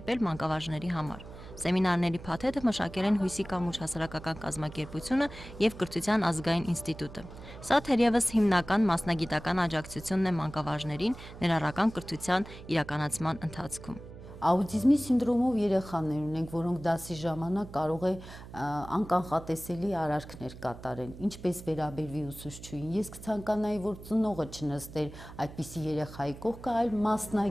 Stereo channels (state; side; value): noise; right; hum, 15 dB below the sound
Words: մանկավարժների համար։ Սեմինարների փաթեթը մշակել են Հույսի կամուրջ հասարակական կազմակերպությունը եւ Կրթության ազգային ինստիտուտը։ Սա թերևս հիմնական մասնագիտական աջակցությունն է մանկավարժներին ներառական կրթության իրականացման ընթացքում։ Աուտիզմի սինդրոմով երեխաներ ունենք, որոնք դասի ժամանակ կարող է անկանխատեսելի արարքներ կատարեն, ինչպես վերաբերվի ուսուցչուհին։ Ես կցանկանայի, որ ծնողը չնստեր այդպիսի երեխայի կողքը, այլ